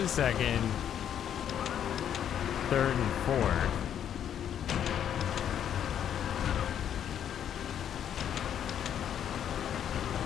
second. Third and fourth.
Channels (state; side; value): quieter; right; 9.5 dB